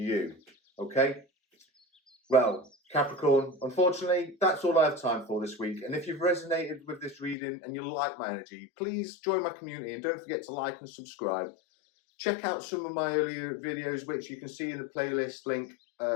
okay? Well, Capricorn, unfortunately, that's all I have time for this week. And if you've resonated with this reading and you like my energy, please join my community and don't forget to like and subscribe. Check out some of my earlier videos, which you can see in the playlist link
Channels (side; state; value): right; drops out; at 7.4 s